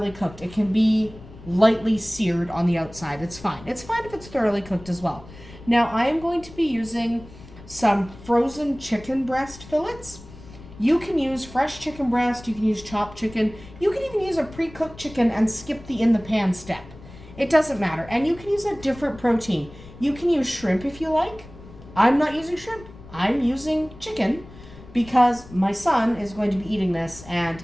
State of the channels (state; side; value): noise; left; rumble, 18 dB below the sound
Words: cooked. It can be lightly seared on the outside. It's fine. It's fine if it's thoroughly cooked as well. Now I am going to be using some frozen chicken breast fillets. You can use fresh chicken breast, you can use chopped chicken, you can even use a pre-cooked chicken and skip the in the pan step. It doesn't matter. And you can use a different protein. You can use shrimp if you like. I'm not using shrimp. I'm using chicken because my son is going to be eating this and